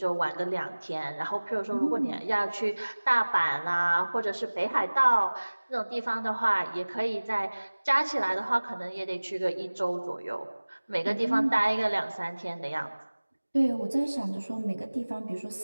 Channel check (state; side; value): inverted; both; correlation -1.00